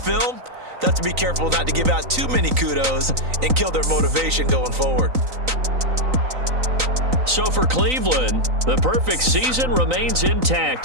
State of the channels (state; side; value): late; left; 3.9 ms